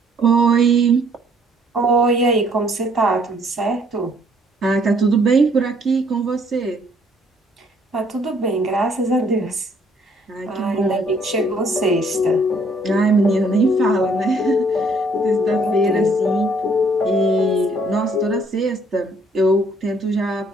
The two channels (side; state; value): both; normal; correlation 0.64